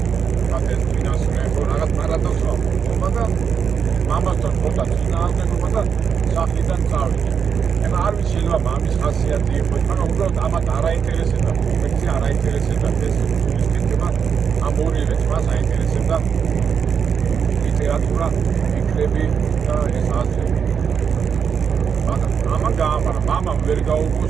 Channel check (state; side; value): quieter; left; 6.9 dB